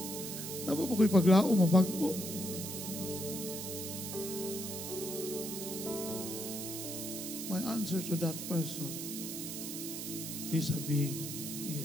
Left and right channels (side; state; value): right; noise; hiss, 6 dB below the sound